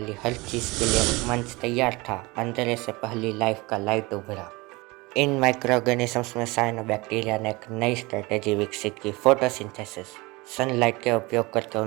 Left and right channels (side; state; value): left; quieter; 23.7 dB